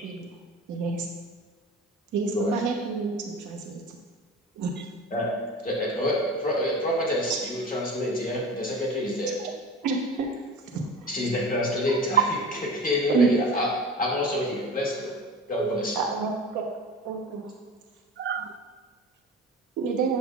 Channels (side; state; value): both; normal; correlation 0.34